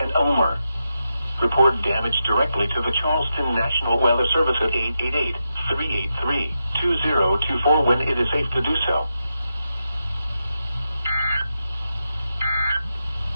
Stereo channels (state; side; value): inverted; both; correlation -0.87